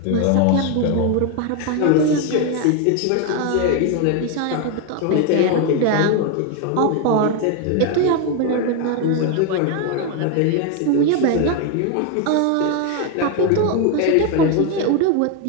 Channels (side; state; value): both; different; correlation 0.01